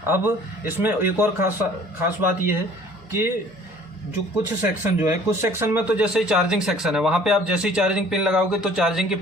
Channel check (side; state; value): both; normal; correlation 0.52